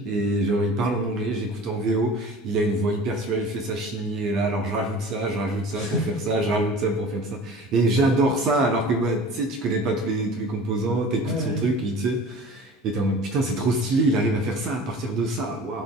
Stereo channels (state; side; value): normal; both; correlation 0.42